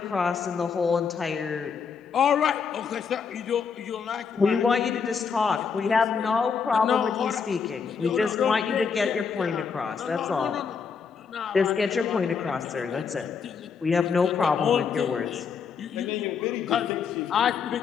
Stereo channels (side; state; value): right; quieter; 6.0 dB